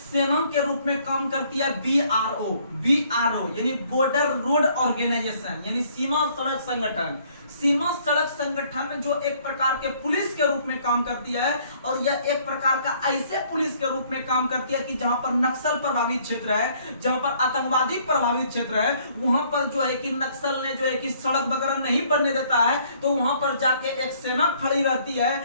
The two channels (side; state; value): both; inverted; correlation -0.62